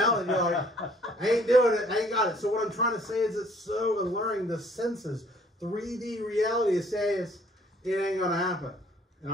You're like, I ain't doing it. I ain't got it. So what I'm trying to say is it's so alluring. The senses, 3D reality says it ain't gonna happen. And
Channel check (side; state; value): both; normal; correlation 0.59